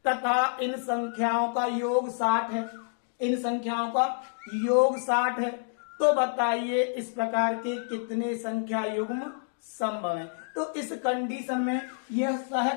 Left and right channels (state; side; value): silent; right; digital silence